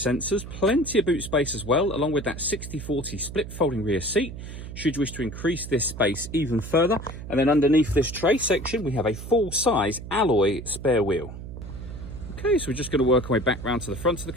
plenty of boot space as well, along with that 60/40 split folding rear seat, should you wish to increase this space even further. And then underneath this tray section, we have a full-size alloy spare wheel. Okay, so we're just going to work our way back round to the front of the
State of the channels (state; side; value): noise; right; hum, 10 dB below the sound